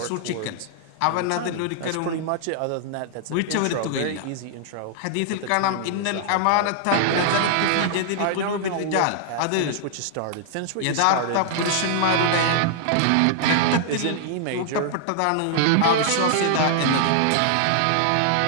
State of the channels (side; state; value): both; different; correlation -0.01